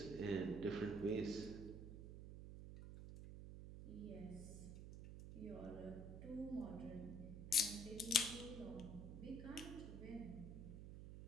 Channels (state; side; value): noise; right; hum, 8 dB below the sound